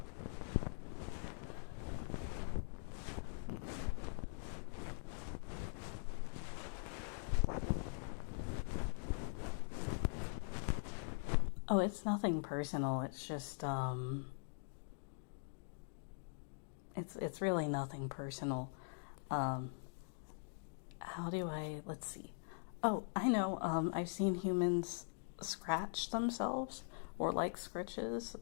Oh, it's nothing personal. It's just, it's really nothing personal. How do let's see. Oh, I know, I've seen humans scratch themselves or like scritches.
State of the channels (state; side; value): silent; right; digital silence